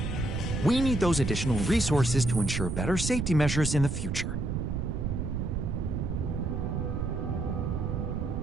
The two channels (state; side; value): noise; right; rumble, 2 dB below the sound